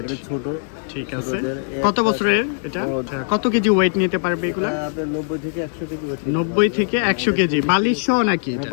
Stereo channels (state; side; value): silent; right; 65 dB below the other